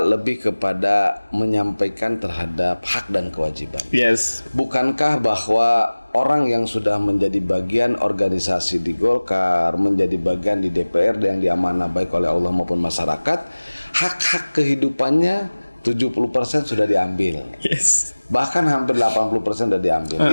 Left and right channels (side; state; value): both; inverted; correlation -1.00